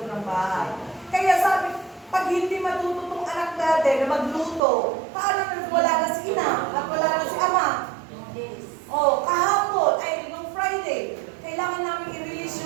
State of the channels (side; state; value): left; drops out; at 4.6 s